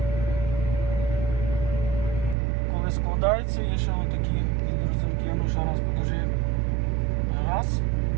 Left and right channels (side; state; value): left; drops out; at 2.4 s